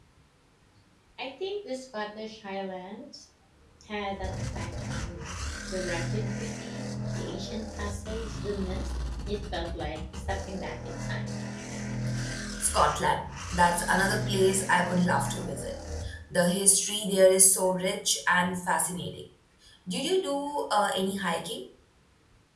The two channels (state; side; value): identical; both; correlation 1.00